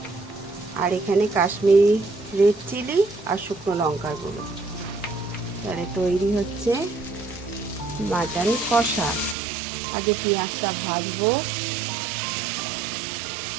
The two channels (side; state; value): left; drops out; at 9.3 s